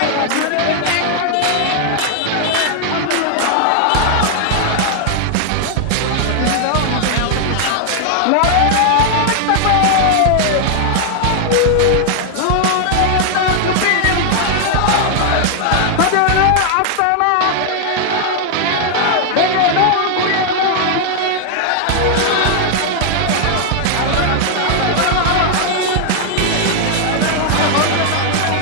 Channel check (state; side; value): different; both; correlation 0.00